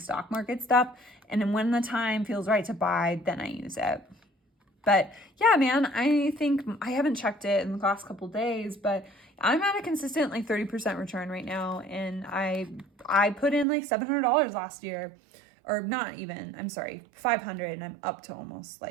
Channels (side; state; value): left; drops out; at 13.7 s